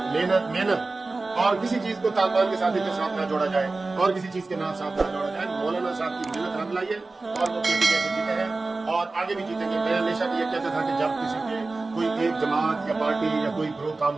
محنت محنت. اور کسی چیز کو طالبان کے ساتھ نہ جوڑا جائے, اور کسی چیز کے ساتھ نہ جوڑا جائے. مولانا صاحب کی محنت رنگ لائی ہے, اور وہ پی ٹی ایم سے جیتے ہیں, اور آگے بھی جیتیں گے. میں ہمیشہ یہ کہتا تھا کہ جب کسی کے کوئی ایک جماعت یا پارٹی یا کوئی گروہ کام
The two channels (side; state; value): left; quieter; 3.5 dB